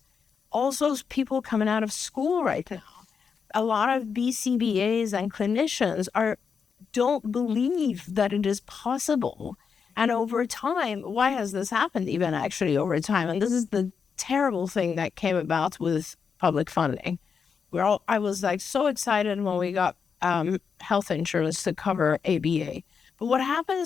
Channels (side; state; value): right; quieter; 6.1 dB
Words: also people coming out of school right now. A lot of BCBAs and clinicians don't believe that it is possible. And over time, why has this happened even actually over time? And this is the terrible thing that came about with public funding. I was like so excited when we got health insurance to cover ABA. But what